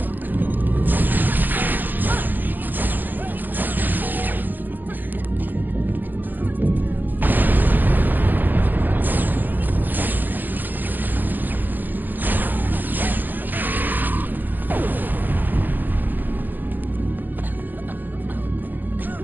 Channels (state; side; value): late; left; 0.087 ms